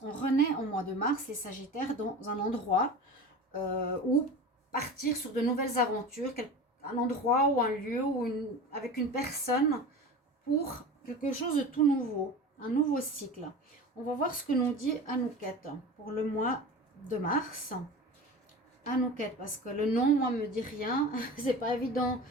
On renaît au mois de mars, les Sagittaires, dans un endroit où partir sur de nouvelles aventures, un endroit ou un lieu ou avec une personne pour quelque chose de tout nouveau, un nouveau cycle. On va voir ce que nous dit Anouket pour le mois de mars. Anouket, parce que le nom, moi, me dit rien. C'est pas évident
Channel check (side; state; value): both; normal; correlation 0.33